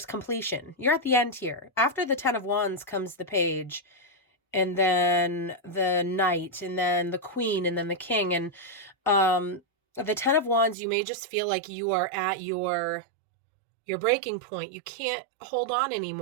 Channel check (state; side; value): drops out; left; at 10.8 s